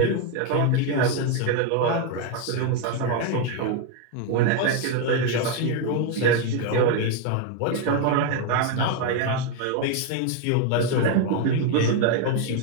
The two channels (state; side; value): different; both; correlation 0.01